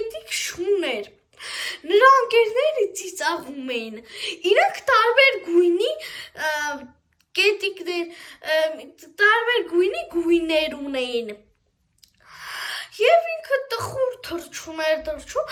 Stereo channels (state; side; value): identical; both; correlation 1.00